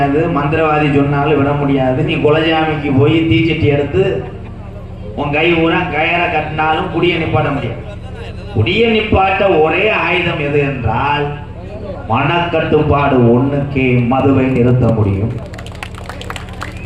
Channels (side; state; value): both; identical; correlation 1.00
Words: மந்திரவாதி சொன்னாலும் விட முடியாது. நீ குலஜாமிக்கு போய் தீச்சட்டி எடுத்து உன் கை ஊரா கயரை கட்டினாலும் குடியை நிப்பாட்ட முடியாது. குடியை நிப்பாட்ட ஒரே ஆயுதம் எது என்றால் மனக்கட்டுப்பாடு ஒண்ணுக்கே மதுவை நிறுத்த முடியும்.